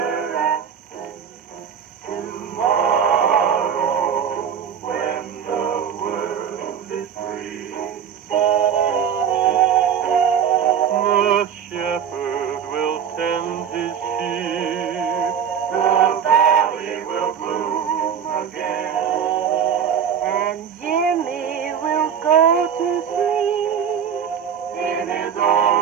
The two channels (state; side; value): quieter; left; 8.2 dB